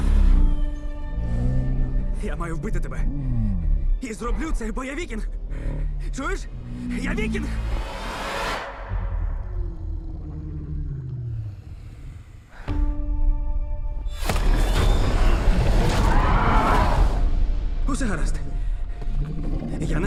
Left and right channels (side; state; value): both; identical; correlation 1.00